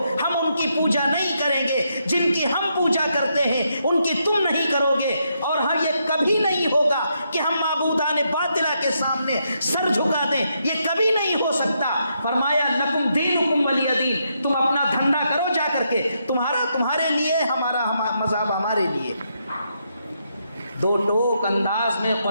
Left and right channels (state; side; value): inverted; both; correlation -0.79